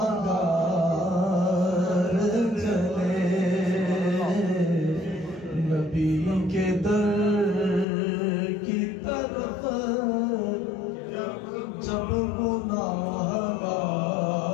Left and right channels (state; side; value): drops out; right; at 7.9 s